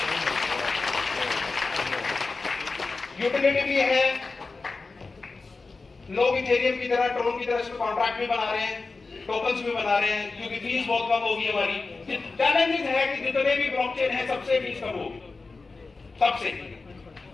यूटिलिटी भी है, लोग इथेरियम की तरह, ट्रोन की तरह इसमें कॉन्ट्रैक्ट भी बना रहे हैं, टोकन्स भी बना रहे हैं, क्योंकि फीस बहुत कम होगी हमारी। चैलेंजेस है कि जितने भी ब्लॉकचेन है सबसे फीस कम होगी, सबसे।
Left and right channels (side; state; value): right; quieter; 3.9 dB